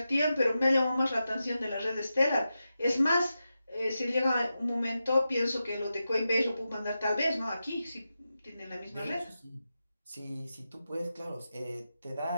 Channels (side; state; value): both; inverted; correlation -0.90